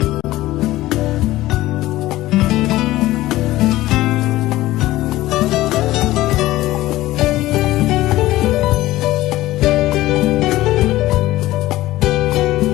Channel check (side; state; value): right; quieter; 16.6 dB